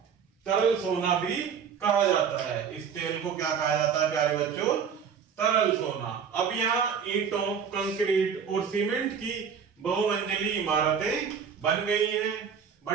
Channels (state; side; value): quieter; left; 7.0 dB